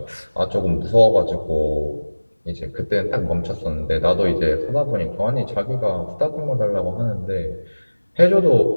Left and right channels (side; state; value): both; inverted; correlation -1.00